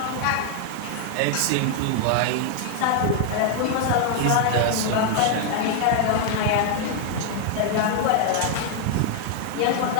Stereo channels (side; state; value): both; different; correlation 0.00